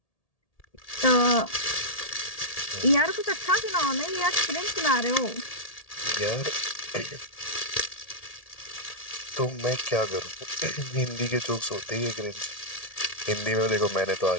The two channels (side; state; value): right; late; 1.8 ms